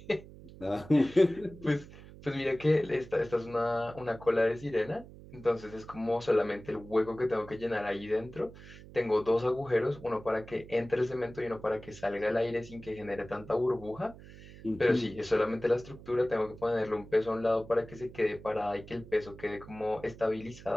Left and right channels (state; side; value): noise; right; hum, 17 dB below the sound